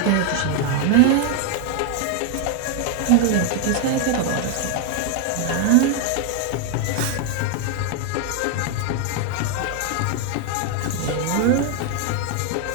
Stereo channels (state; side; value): different; both; correlation 0.01